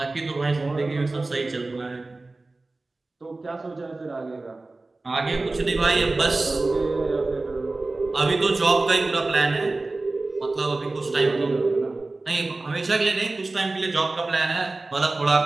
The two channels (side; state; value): left; quieter; 3.2 dB